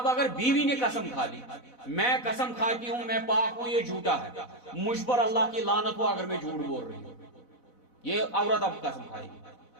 اگر بیوی نے قسم کھا لی، میں قسم کھاتی ہوں میں پاک ہوں، یہ جھوٹا ہے، مجھ پر اللہ کی لعنت ہو اگر میں جھوٹ بول رہی ہوں، یہ عورت اب قسم کھائے گی،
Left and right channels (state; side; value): late; right; 4.0 ms